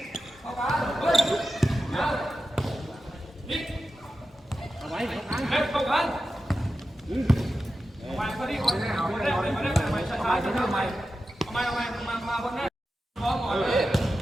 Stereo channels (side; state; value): both; normal; correlation 0.92